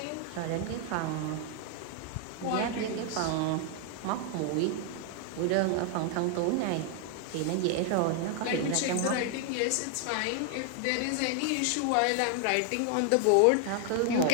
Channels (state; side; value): different; both; correlation 0.00